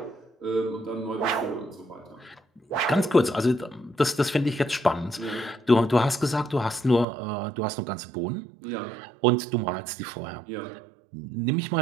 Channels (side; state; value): left; drops out; at 7.1 s